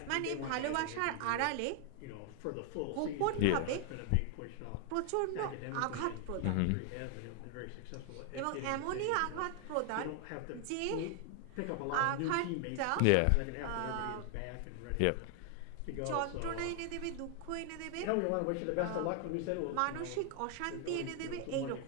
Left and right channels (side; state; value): both; different; correlation 0.00